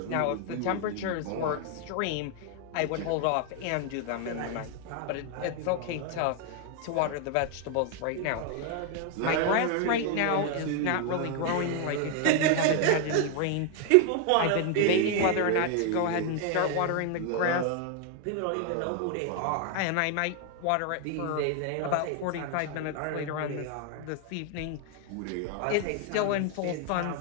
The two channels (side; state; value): both; different; correlation 0.01